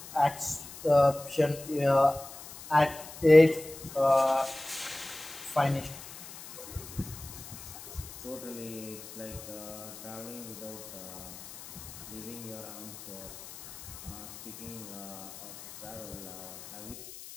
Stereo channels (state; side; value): noise; left; hiss, 14 dB below the sound